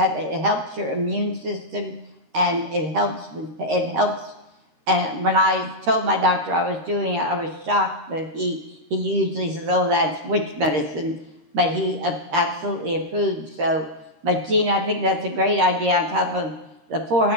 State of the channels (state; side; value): late; left; 13 ms